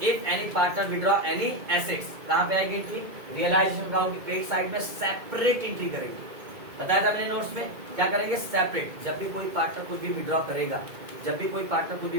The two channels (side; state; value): left; late; 2.2 ms